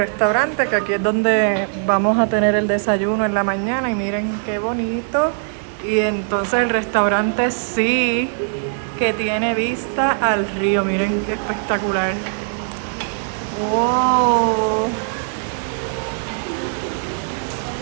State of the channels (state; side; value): silent; left; digital silence